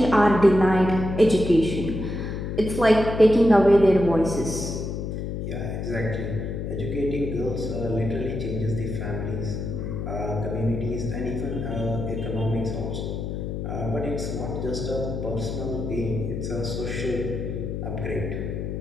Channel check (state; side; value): noise; left; hum, 4 dB below the sound